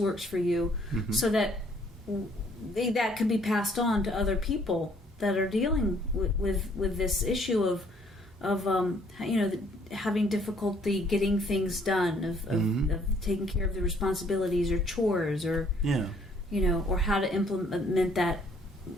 for you, Mm-hmm. so that that can be passed on to other people that are dealing with this issue of having difficulty getting things done, of taking care of the responsibilities or chores, or or how to implement that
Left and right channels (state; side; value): normal; both; correlation 0.63